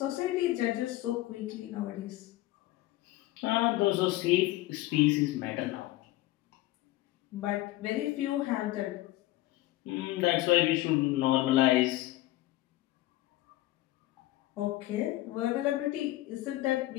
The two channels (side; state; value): right; quieter; 16.8 dB